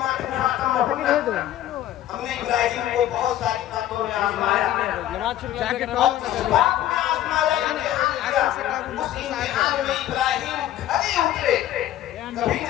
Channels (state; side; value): quieter; right; 12.5 dB